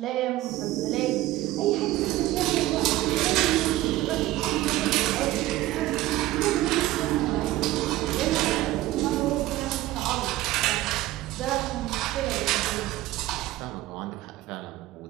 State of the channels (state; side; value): quieter; left; 16.3 dB